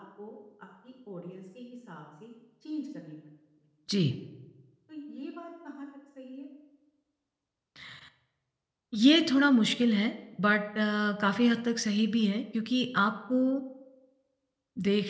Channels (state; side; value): identical; both; correlation 1.00